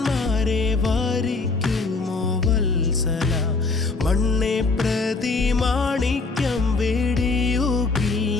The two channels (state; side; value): quieter; right; 3.9 dB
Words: വാരിക്കുമോ വത്സല മണ്ണെ പ്രതി മാണിക്യം വേടിയുകില്ല